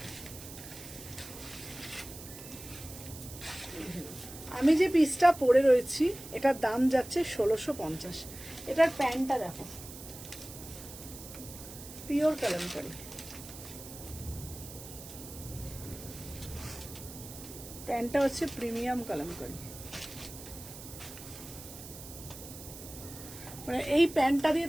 আমি যে পিসটা পরে রয়েছি এটার দাম যাচ্ছে 1650। এটার প্যান্টটা দেখো, পিওর কালামকারি। প্যান্টটা হচ্ছে প্রিমিয়াম কালামকারি। মানে এই প্যান্টটা দিয়ে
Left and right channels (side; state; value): right; noise; hiss, 14 dB below the sound